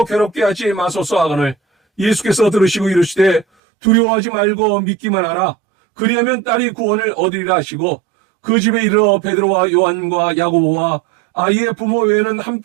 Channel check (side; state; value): left; drops out; at 3.5 s